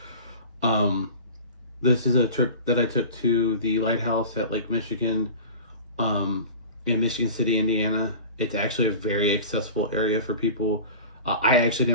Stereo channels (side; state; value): both; inverted; correlation -0.37